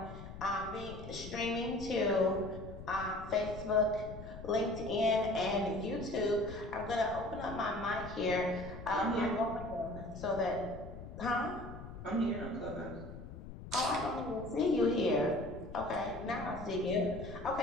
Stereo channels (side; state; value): left; noise; rumble, 12 dB below the sound